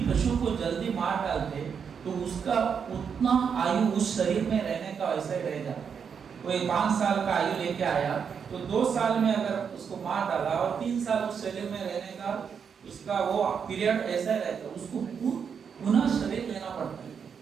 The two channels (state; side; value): quieter; left; 6.8 dB